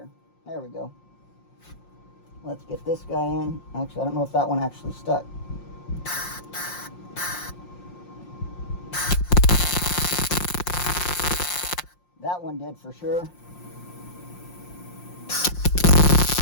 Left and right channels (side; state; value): right; late; 5.6 ms